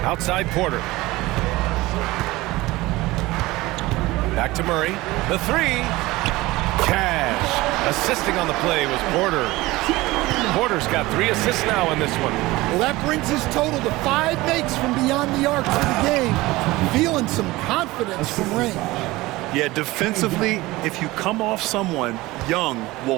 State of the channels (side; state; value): left; quieter; 19.7 dB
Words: Outside Porter. Back to Murray. The 3. Cash. Assisting on the play was Porter. Porter's got 3 assists now in this one. Well, that brings his total to 5 makes from beyond the arc for the game. Feeling some confidence from range. Yeah, defensively, if you come off someone, Young